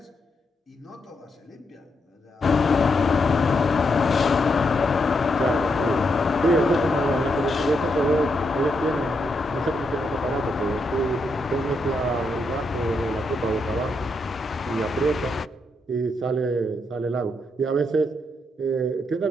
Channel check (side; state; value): both; normal; correlation 0.80